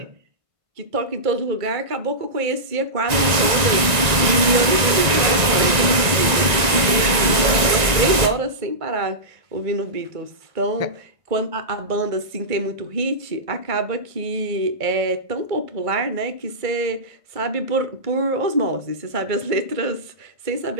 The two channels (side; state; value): left; late; 1.9 ms